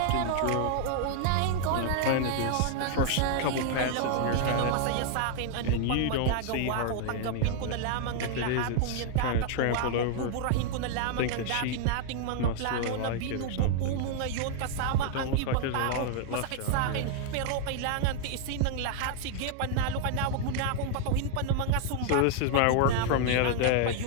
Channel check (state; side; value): different; both; correlation 0.00